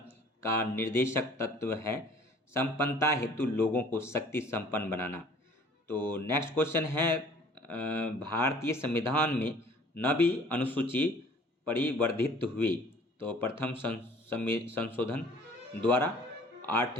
का निर्देशक तत्व है संपन्नता हेतु लोगों को शक्ति संपन्न बनाना। तो नेक्स्ट क्वेश्चन है भारतीय संविधान में 9वीं अनुसूची परिवर्धित हुई। तो प्रथम संशोधन द्वारा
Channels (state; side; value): normal; both; correlation 0.52